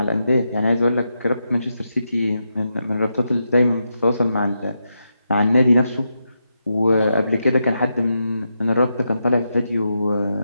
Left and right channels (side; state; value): both; inverted; correlation -0.85